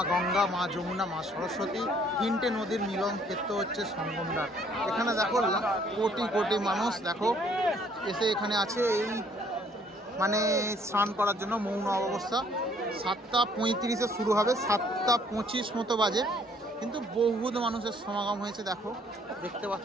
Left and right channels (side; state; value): both; normal; correlation 0.62